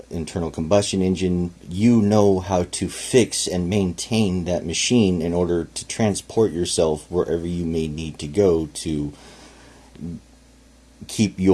internal combustion engine, you know how to fix and maintain that machine in order to transport yourself wherever you may need to go to keep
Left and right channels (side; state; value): both; identical; correlation 1.00